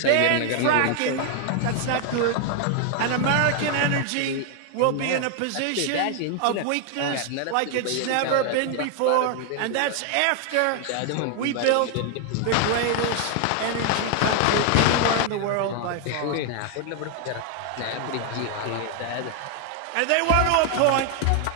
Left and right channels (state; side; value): different; both; correlation 0.00